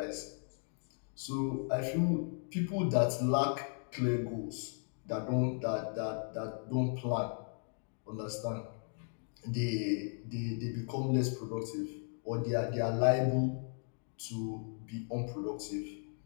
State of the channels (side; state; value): right; silent; 54 dB below the other